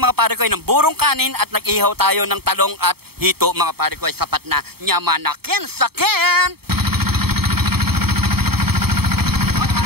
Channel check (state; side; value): late; left; 0.96 ms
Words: pare ko ng burong kanin at nag-ihaw tayo ng talong at hito mga pare ko. Sapat na nyamanakin sakin.